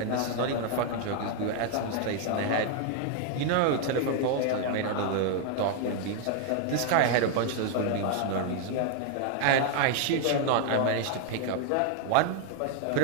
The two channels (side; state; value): both; different; correlation 0.00